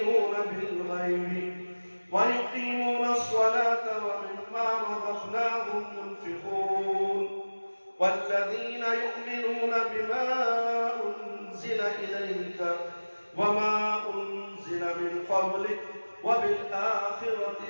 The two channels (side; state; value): both; inverted; correlation -1.00